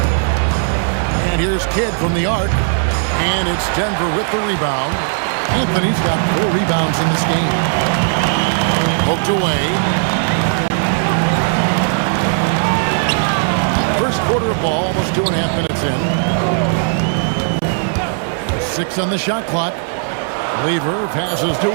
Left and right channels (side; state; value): left; silent; 67 dB below the other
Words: And here's Kidd from the arc. And it's Denver with the rebound. Anthony's got 4 rebounds in this game. Poked away. First quarter of ball, almost 2.5 minutes in. 6 on the shot clock. Lever passes to